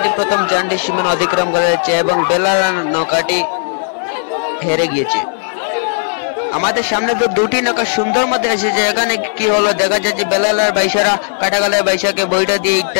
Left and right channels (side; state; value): right; silent; digital silence